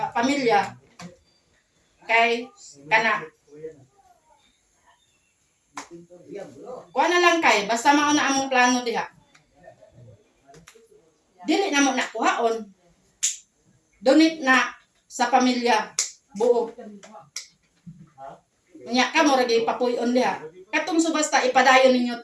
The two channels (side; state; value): both; identical; correlation 1.00